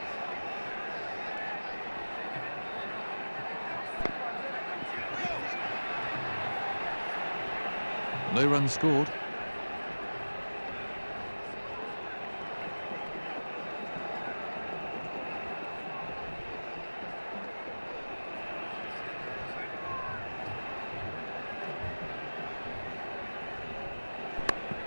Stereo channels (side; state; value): both; inverted; correlation -1.00